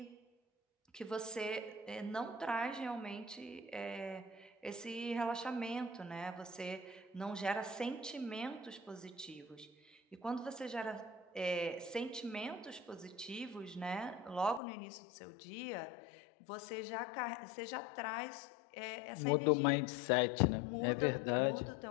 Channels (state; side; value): drops out; right; at 14.6 s